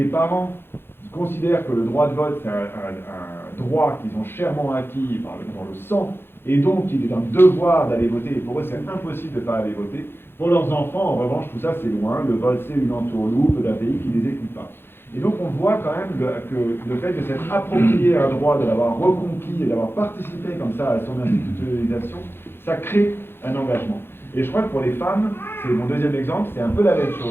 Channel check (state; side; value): late; right; 0.11 ms